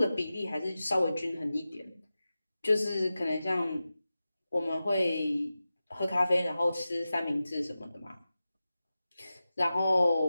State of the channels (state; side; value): inverted; both; correlation -0.94